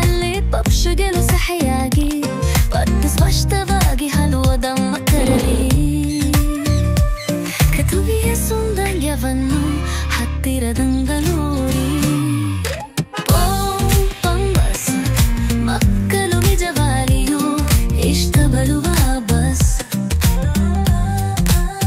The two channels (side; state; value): both; identical; correlation 1.00